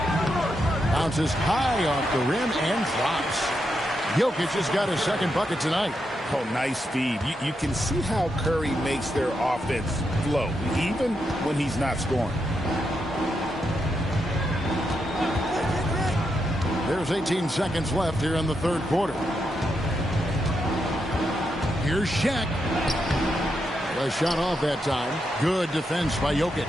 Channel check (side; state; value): both; normal; correlation 0.83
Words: Bounces high off the rim and drops. Jokic has got his second bucket tonight. Oh, nice speed. You can see how Curry makes their offense flow, even when he's not scoring. There's 18 seconds left here in the third quarter. Here's Shaq. A shot off that time. Good defense by Jokic.